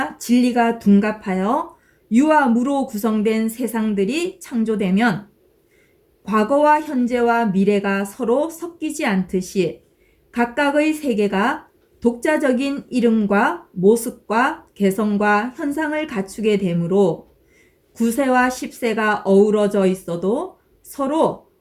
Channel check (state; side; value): identical; both; correlation 1.00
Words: 진리가 둔갑하여 유와 무로 구성된 세상들이 창조되면 과거와 현재와 미래가 서로 섞이지 않듯이 각각의 세계가 독자적인 이름과 모습과 개성과 현상을 갖추게 되므로 9세와 10세가 어우러져 있어도 서로